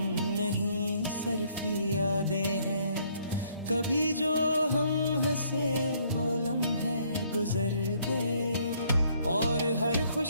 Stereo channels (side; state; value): both; inverted; correlation -0.66